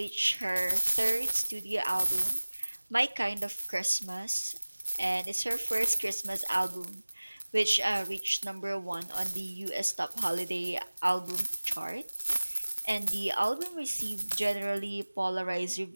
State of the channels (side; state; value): both; inverted; correlation -1.00